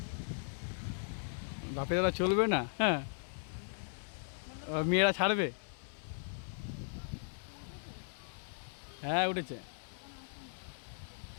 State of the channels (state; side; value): silent; right; 53 dB below the other